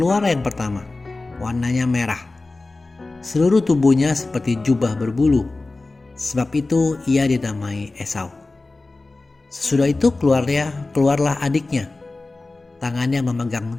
yang pertama, warnanya merah. Seluruh tubuhnya seperti jubah berbulu, sebab itu ia dinamai Esau. Sesudah itu keluarlah adiknya, tangannya memegang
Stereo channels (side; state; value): right; quieter; 3.3 dB